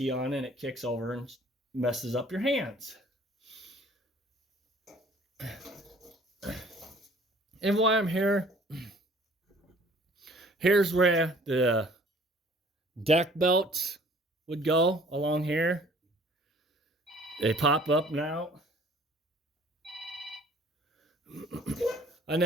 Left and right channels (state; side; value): normal; both; correlation 0.54